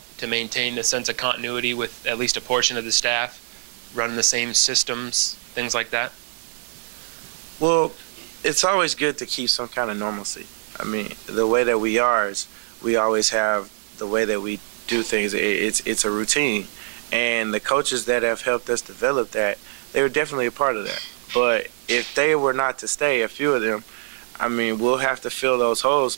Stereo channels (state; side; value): silent; left; digital silence